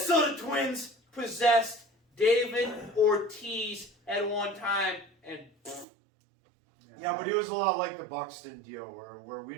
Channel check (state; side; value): drops out; left; at 5.9 s